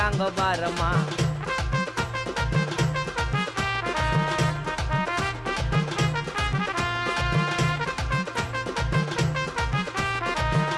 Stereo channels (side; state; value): both; identical; correlation 1.00